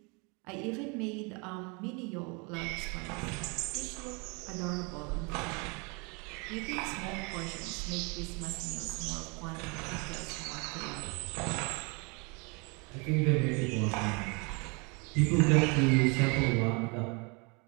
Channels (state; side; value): quieter; left; 31.1 dB